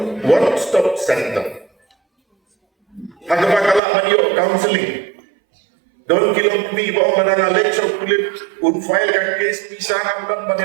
stop center. Hagapakala manyo counseling. Don kilom pi bawang mana lecture kulit un file ka case pisang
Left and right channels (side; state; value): left; drops out; at 3.8 s